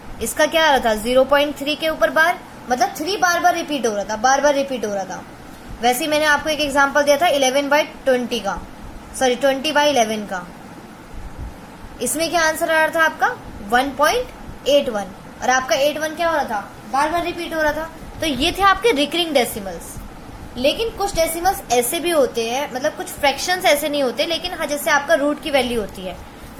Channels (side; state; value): both; identical; correlation 1.00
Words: इसका क्या आ रहा था 0.3 के ऊपर बार, मतलब 3 बार बार रिपीट हो रहा था, बार बार रिपीट हो रहा था। वैसे ही मैंने आपको एक एग्जांपल दिया था 11/20 का, सॉरी 20/11 का। इसमें क्या आंसर आ रहा था आपका 1.81, और आपका 81 क्या हो रहा था, बार बार रिपीट हो रहा था। तो ये थे आपके रिकरिंग डेसिमल्स। लेकिन कुछ डेसिमल्स ऐसे भी होते हैं, मतलब कुछ फ्रैक्शंस ऐसे नहीं होते, लेकिन हाँ, जैसे आपका रूट की वैल्यू होती है,